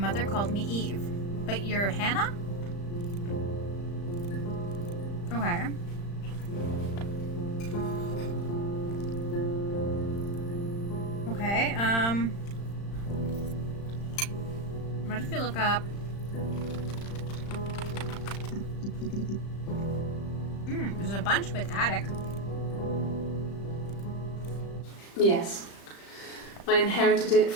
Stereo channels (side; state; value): right; late; 35 ms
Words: called me Eve. But you're Hannah? Okay. Okay, what if you look up... there's a bunch with attic. Yes. I inherited it